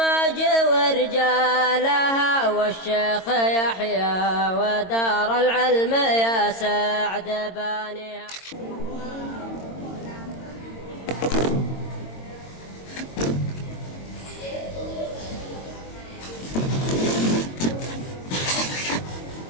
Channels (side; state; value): right; late; 22 ms